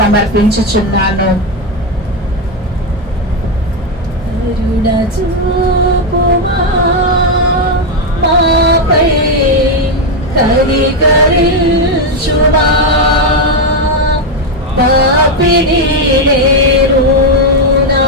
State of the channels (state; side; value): normal; both; correlation 0.06